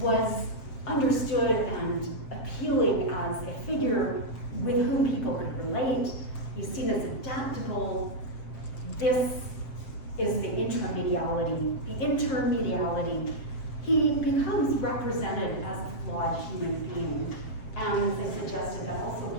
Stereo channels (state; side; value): late; right; 7.5 ms